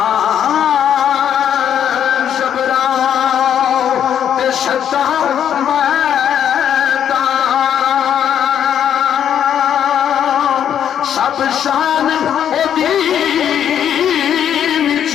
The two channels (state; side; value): quieter; right; 9.3 dB